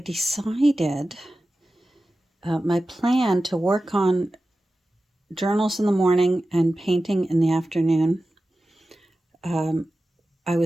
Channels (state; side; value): normal; both; correlation 0.94